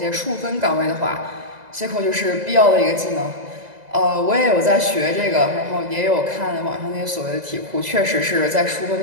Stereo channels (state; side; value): late; left; 2.0 ms